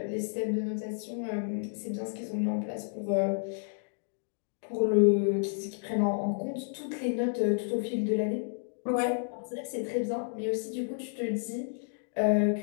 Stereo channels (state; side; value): silent; right; digital silence